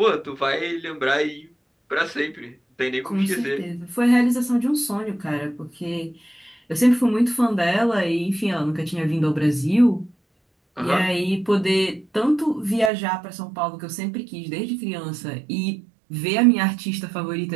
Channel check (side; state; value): left; drops out; at 12.9 s